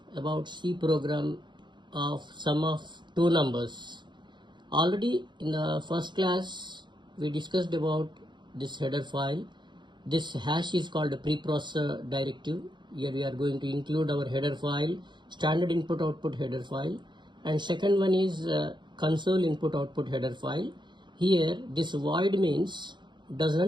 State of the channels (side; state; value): left; late; 0.22 ms